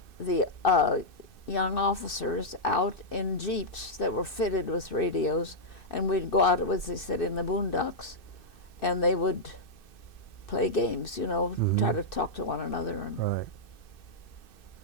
the young officers out in jeeps that were fitted with radios, and we'd go out, as they said, in the boondocks, and they would play games, you know, try to talk to one another. And, Right.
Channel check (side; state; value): right; late; 2.6 ms